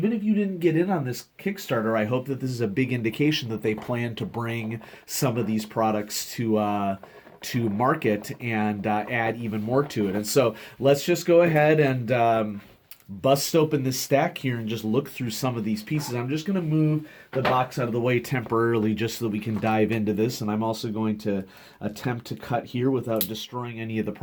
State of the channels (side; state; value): both; identical; correlation 1.00